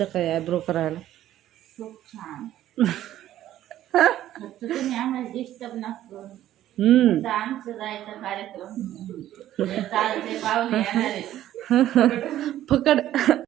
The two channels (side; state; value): left; quieter; 12.8 dB